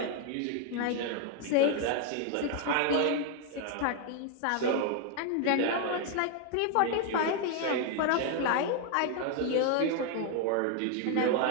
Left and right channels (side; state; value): both; different; correlation 0.00